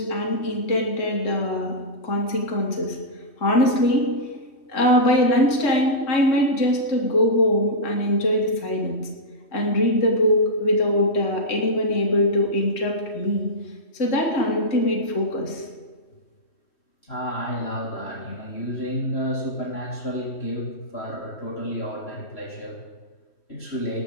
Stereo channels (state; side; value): late; right; 3.2 ms